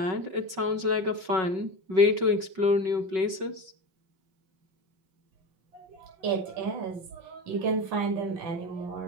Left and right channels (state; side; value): late; left; 5.3 ms